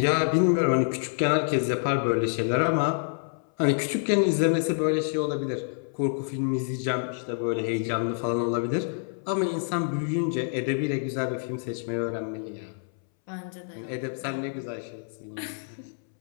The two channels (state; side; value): silent; right; 60 dB below the other